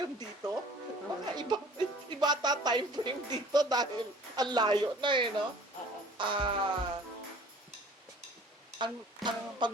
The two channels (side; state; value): both; normal; correlation 0.49